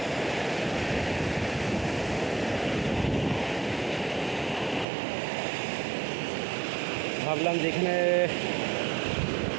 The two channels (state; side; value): drops out; left; at 4.9 s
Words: ভাবলাম যে এখানে